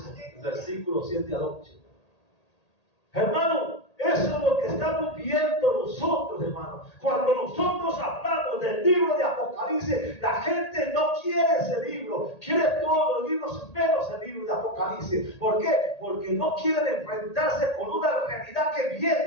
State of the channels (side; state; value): right; late; 1.8 ms